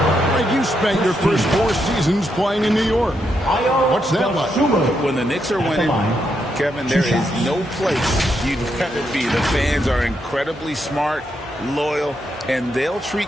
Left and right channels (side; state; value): both; normal; correlation 0.80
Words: Right, you spent your first 4 seasons playing in New York. What's that like? When the Knicks are winning, Kevin, there is no place you'd rather be. The fans are incredibly smart, loyal, and they'll treat